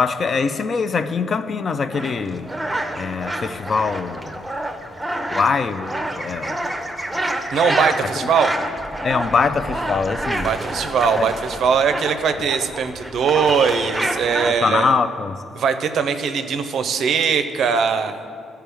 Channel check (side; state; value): both; normal; correlation 0.72